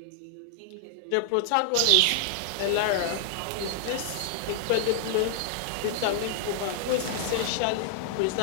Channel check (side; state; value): both; different; correlation 0.00